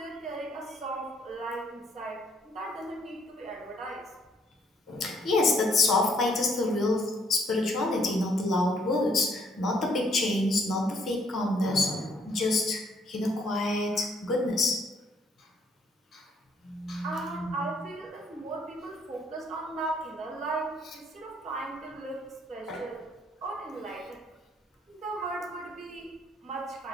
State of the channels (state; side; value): normal; both; correlation 0.66